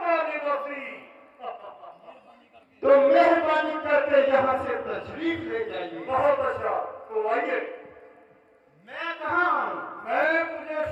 निवासी। तो मेहरबानी करके यहाँ से तशरीफ ले जाइए। बहुत अच्छा, तो आइए। मैं कहाँ आऊँ? मैं तुझे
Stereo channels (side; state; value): both; identical; correlation 1.00